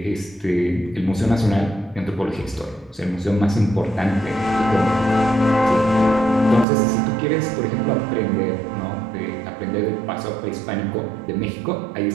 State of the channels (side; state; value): left; drops out; at 6.7 s